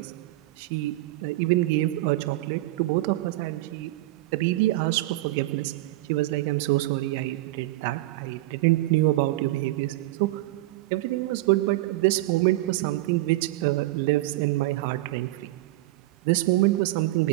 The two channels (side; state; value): left; quieter; 17.6 dB